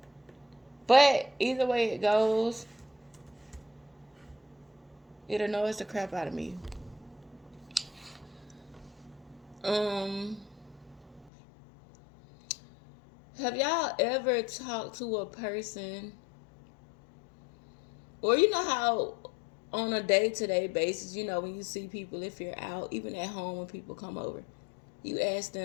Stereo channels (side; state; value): right; drops out; at 11.3 s